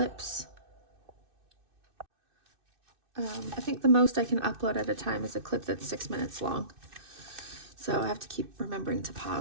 I think the most I can upload at a time is a clip that's 6 minutes long. So I have to keep remembering to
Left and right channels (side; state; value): left; late; 2.6 ms